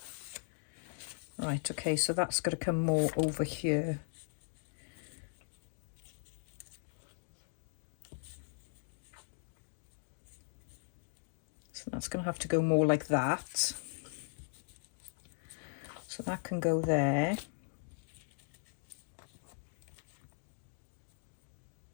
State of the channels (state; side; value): silent; right; digital silence